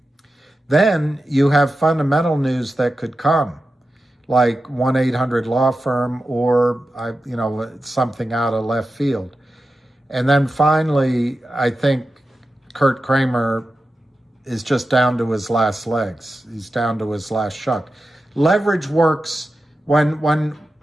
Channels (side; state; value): both; normal; correlation 0.92